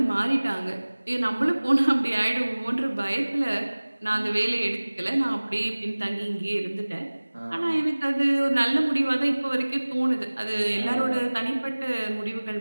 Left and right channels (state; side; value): inverted; both; correlation -1.00